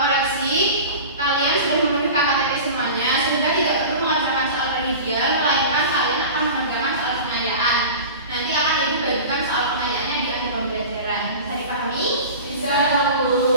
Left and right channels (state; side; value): inverted; both; correlation -0.34